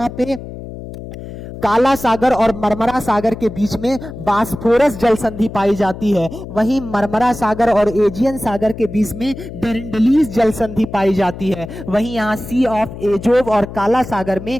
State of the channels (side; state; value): left; noise; hum, 12 dB below the sound